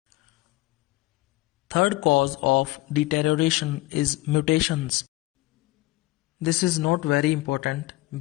Third cause of deterioration is mutations. This is not very important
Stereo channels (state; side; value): quieter; right; 19.2 dB